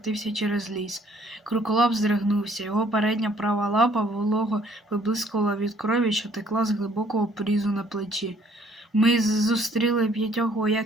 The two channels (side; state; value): both; normal; correlation 0.61